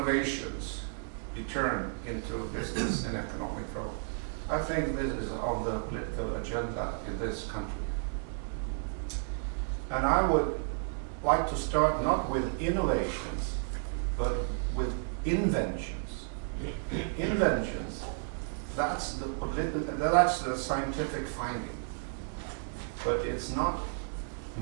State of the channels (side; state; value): left; silent; digital silence